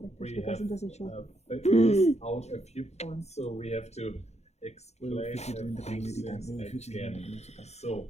we have figured out a few points, so we have to explain a few things again. So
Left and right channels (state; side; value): late; right; 0.32 ms